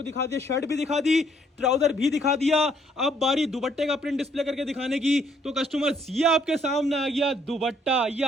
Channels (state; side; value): normal; both; correlation 0.67